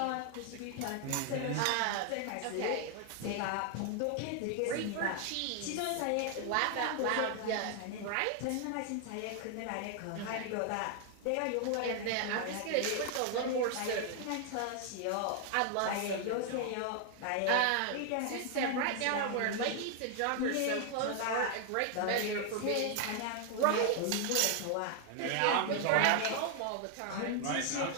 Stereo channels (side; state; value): both; different; correlation 0.00